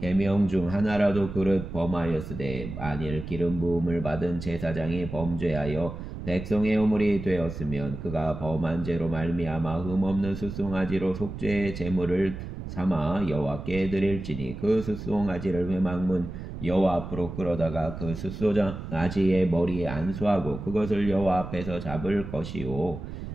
중 하나라도 그릇 범하였으되 만일 기름 부음을 받은 제사장이 범죄하여 백성의 허물이 되었으면 그가 범한 죄로 말미암아 흠없는 숫송아지로 속죄의 제물을 삼아 여호와께 드릴지니 그 숫송아지를 회막문 여호와 앞으로 끌어다가 그 숫송아지의 머리에 안수하고 그것을 여호와 앞에서 잡을 것이요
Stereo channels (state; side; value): noise; right; rumble, 9 dB below the sound